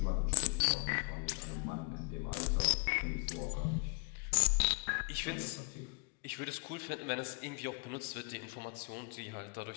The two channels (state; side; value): quieter; right; 33.1 dB